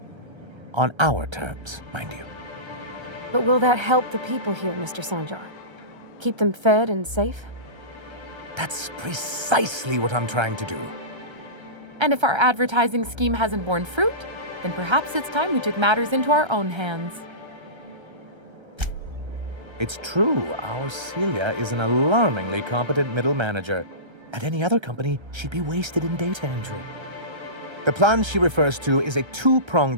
On our terms, mind you. But will that help the people here, Mr. Sanjar? Keep them fed and safe? That's precisely what I'm trying to do. And if our advertising scheme hasn't borne fruit, then perhaps it's time we took matters into our own hands. It's true, our Celia is an alarmingly competent middle manager. At any other company, she'd be wasted in data entry. The plan she refers to is a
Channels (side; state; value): left; late; 1.3 ms